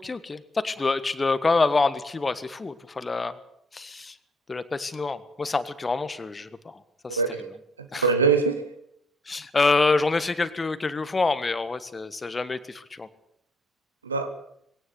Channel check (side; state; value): both; normal; correlation 0.65